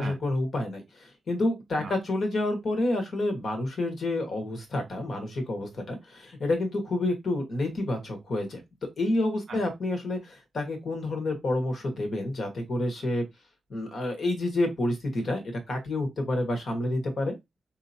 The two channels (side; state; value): both; normal; correlation 0.87